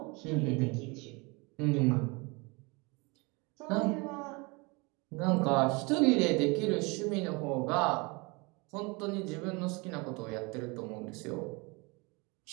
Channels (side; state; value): left; quieter; 27.9 dB